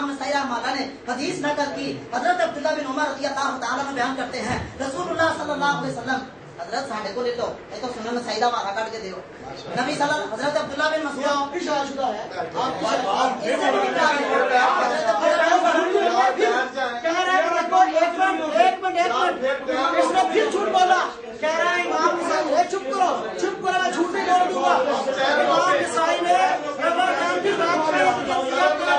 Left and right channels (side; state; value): both; identical; correlation 1.00